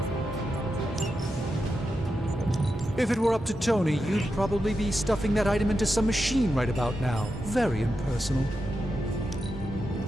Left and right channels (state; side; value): normal; both; correlation 0.88